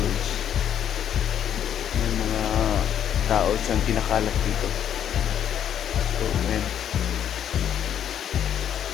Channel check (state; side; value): quieter; right; 9.5 dB